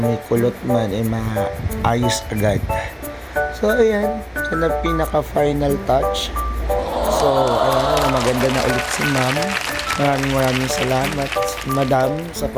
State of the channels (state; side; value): identical; both; correlation 1.00